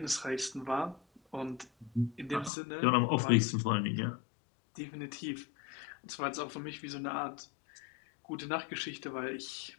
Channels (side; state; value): right; drops out; at 2.5 s